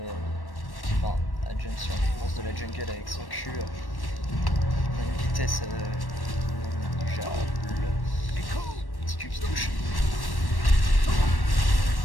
enfin à jump sur les monstres de la jungle avec son cul. On a une vitesse déjà petit cul qui touche.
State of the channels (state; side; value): late; right; 1.1 ms